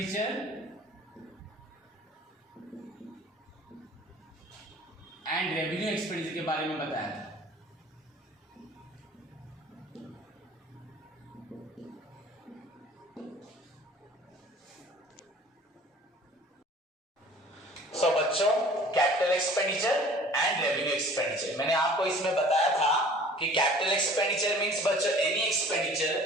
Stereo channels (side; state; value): both; normal; correlation 0.49